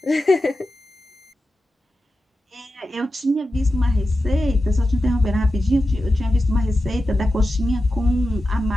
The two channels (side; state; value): both; normal; correlation 0.92